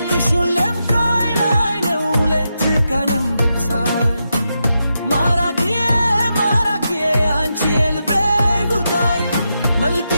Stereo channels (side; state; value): both; inverted; correlation -0.86